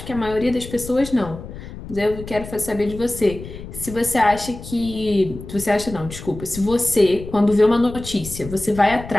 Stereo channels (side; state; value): left; noise; rumble, 12 dB below the sound